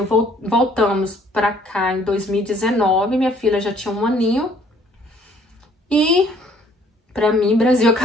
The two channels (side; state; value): both; normal; correlation 0.60